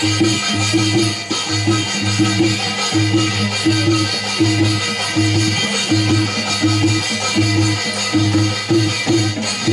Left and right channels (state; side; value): identical; both; correlation 1.00